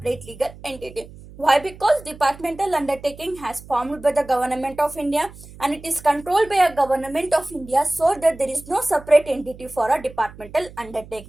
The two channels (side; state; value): right; noise; hum, 18 dB below the sound